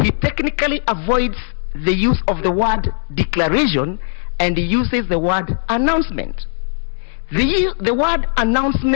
he technically avoids the use of the word declaration and he uses the word announcement. The word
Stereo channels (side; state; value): right; silent; 67 dB below the other